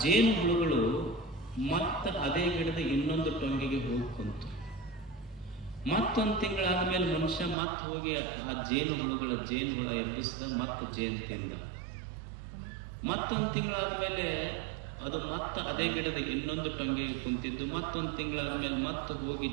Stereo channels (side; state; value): left; drops out; at 7.6 s